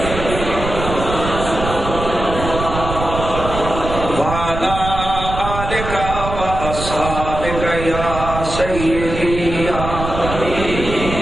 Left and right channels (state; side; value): noise; right; rumble, 6 dB below the sound